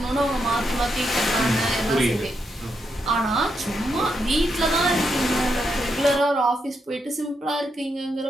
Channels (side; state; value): both; normal; correlation 0.82